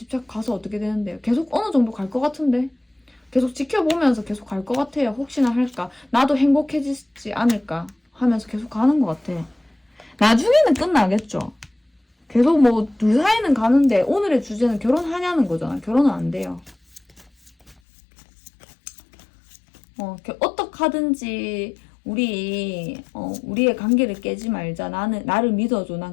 가서 어떻게 되는데요? 계속 어느 정도 갈 것 같은데? 계속 지켜보면서 계속 갈 것 같아요. 혹시나 할까? 나도 행복해지지 않을까? 하면서 계속 가는 것 같아. 나중에는 끝나겠죠? 계속 뭐 둘 사이는 가는데 오늘의 주제는 결혼하냐는 거잖아. 결혼은 안 돼요. 어떻게 하든지 우리의 관계를 깨지 말자. 나를 믿어줘. 난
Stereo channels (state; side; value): drops out; right; at 17.8 s